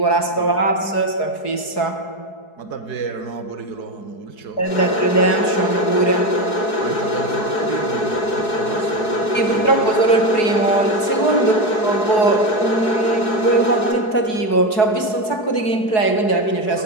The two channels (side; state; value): right; late; 4.7 ms